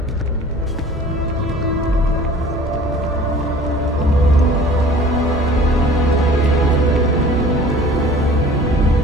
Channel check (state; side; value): normal; both; correlation 0.47